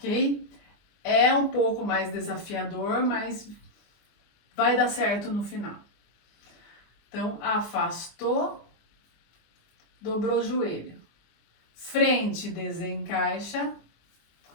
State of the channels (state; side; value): late; right; 24 ms